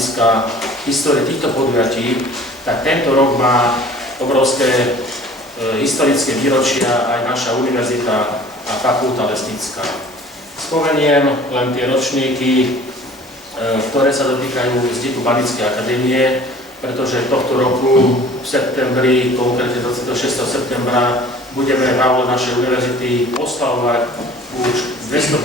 histórie týchto podujatí, tak tento rok má obrovské historické výročia aj naša univerzita a fakulta lesnícka. Spomeniem len tie ročníky, ktoré sa dotýkajú vzniku Banickej akadémie, pretože tohto roku v septembri, konkrétne 26. septembra, budeme v aule našej univerzity oslavovať už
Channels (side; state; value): both; normal; correlation 0.48